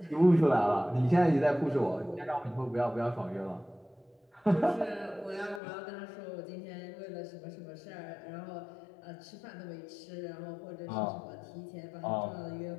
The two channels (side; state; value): right; drops out; at 5.6 s